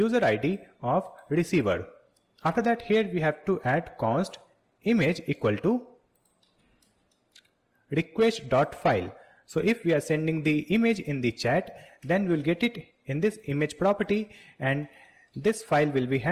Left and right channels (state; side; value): identical; both; correlation 1.00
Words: ID of receiver. After that, here we have to add const image equal to request.file. So if we are sending the image in the chat, then we'll get it in this image property, and this file will be